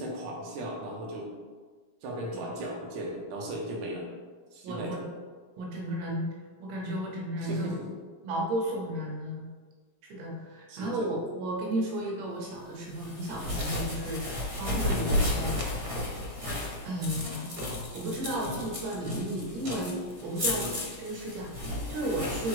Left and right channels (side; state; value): left; late; 17 ms